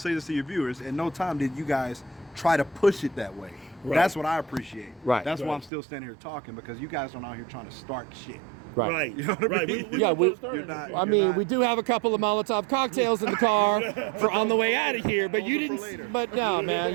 this to your viewers, at no time did you guys try to push it that way. Right. That's what I appreciate. Right. That's why I'm still standing here talking, because you guys aren't out here trying to start shit. Right. You know what I mean? You're not. We do have a couple of Molotov cocktails in the car for on the way out of here, but you didn't. But no, man,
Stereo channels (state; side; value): drops out; left; at 5.7 s